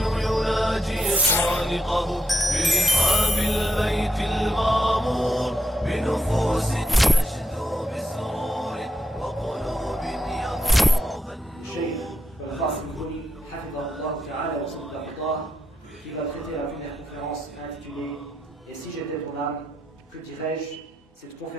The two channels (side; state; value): both; normal; correlation 0.82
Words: يناجي خالقه برحاب البيت المعمور بنفوس تشدو بسرور وقلوب يغمرها النور. الشيخ القاسم البني حفظه الله تعالى وصدق الله qui va traiter la première conférence intitulée « Et si j'étais ton âme, que dirais-je » Cette